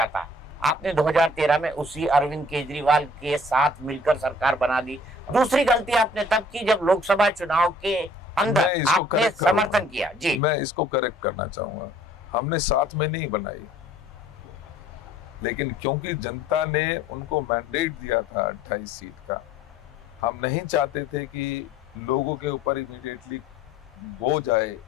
आपने 2013 में उसी अरविंद केजरीवाल के साथ मिलकर सरकार बना दी। दूसरी गलती आपने तब की जब लोकसभा चुनाव के अंदर आपने समर्थन किया। जी, मैं इसको करेक्ट करना चाहूंगा। हमने साथ में नहीं बनाई, लेकिन क्योंकि जनता ने उनको मैंडेट दिया था 28 सीट का, हम नहीं चाहते थे कि लोगों के ऊपर इमीडिएटली बोझ आए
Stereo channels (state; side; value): normal; both; correlation 0.55